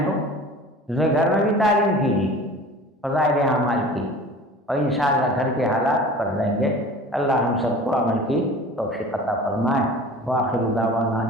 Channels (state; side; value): normal; both; correlation 0.41